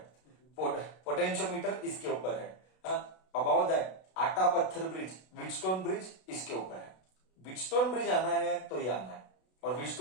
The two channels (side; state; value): right; late; 32 ms